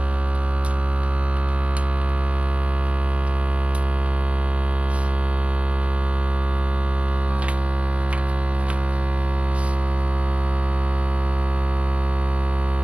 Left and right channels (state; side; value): late; left; 0.062 ms